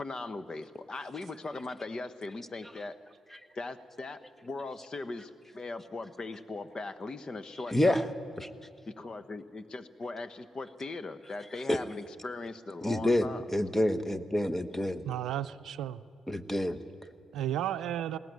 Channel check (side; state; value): both; normal; correlation 0.86